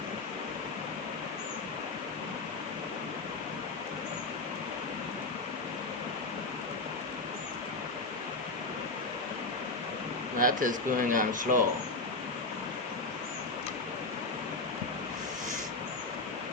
That is going on slow.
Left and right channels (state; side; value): quieter; right; 3.4 dB